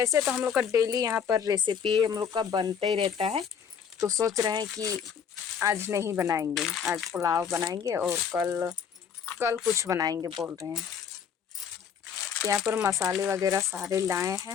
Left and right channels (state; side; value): quieter; right; 7.3 dB